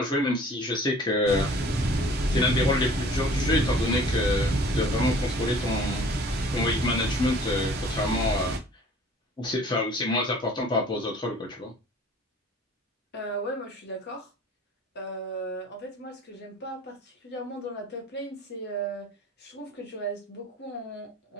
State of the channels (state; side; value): normal; both; correlation 0.50